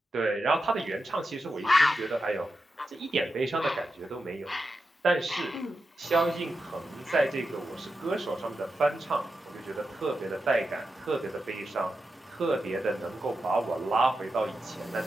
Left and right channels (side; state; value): both; normal; correlation 0.89